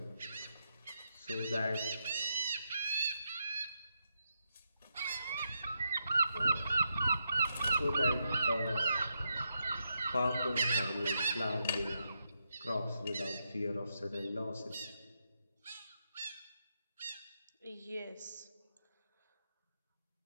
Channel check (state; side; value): inverted; both; correlation -0.82